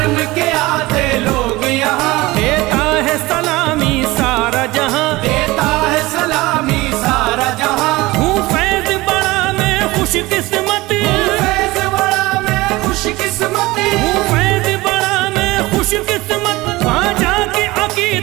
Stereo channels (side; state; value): left; quieter; 20.4 dB